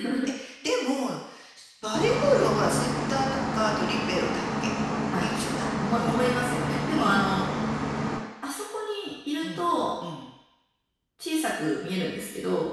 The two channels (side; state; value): both; identical; correlation 1.00